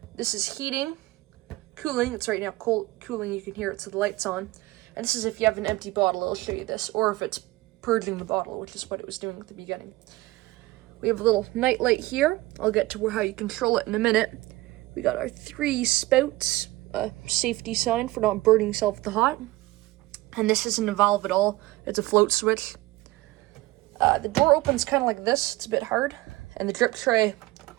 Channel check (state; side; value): quieter; left; 19.2 dB